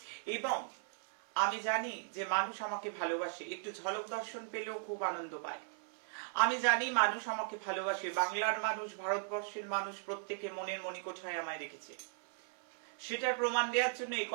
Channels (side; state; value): left; silent; 53 dB below the other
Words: এবং আমি জানি যে মানুষ আমাকে ভালোবাসে, একটু ঝলক দর্শন পেলেও খুব আনন্দ পায়। আমি জানি মানুষ আমাকে ভালোবাসে, বাংলার মানুষ, ভারতবর্ষের মানুষ, প্রত্যেকে মনের মণিকোঠায় আমায় রেখেছে। সেটার প্রমাণ দেওয়ার জন্য এই